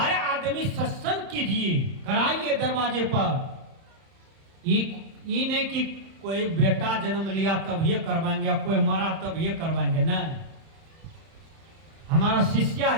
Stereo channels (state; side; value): late; left; 31 ms